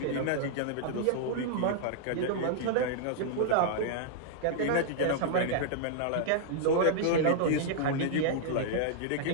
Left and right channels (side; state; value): both; different; correlation -0.01